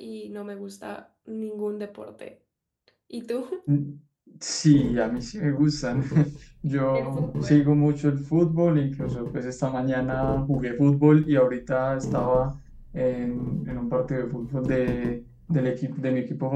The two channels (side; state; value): both; identical; correlation 1.00